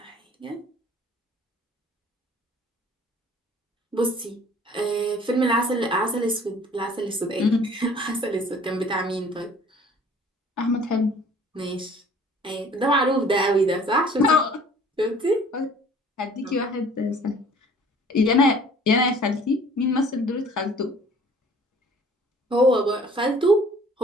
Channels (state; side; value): normal; both; correlation 0.52